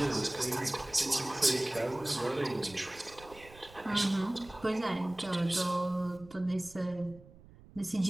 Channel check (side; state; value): right; noise; rumble, 21 dB below the sound